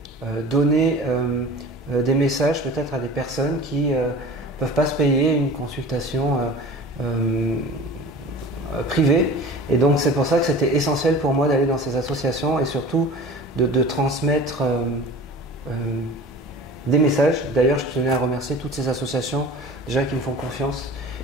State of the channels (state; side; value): normal; both; correlation 0.40